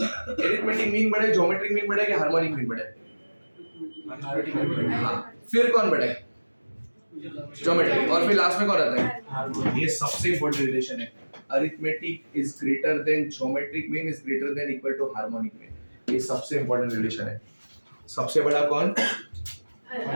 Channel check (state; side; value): inverted; both; correlation -1.00